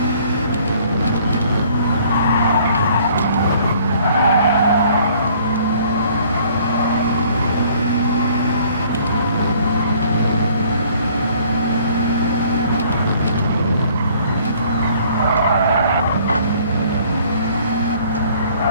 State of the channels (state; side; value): inverted; both; correlation -0.58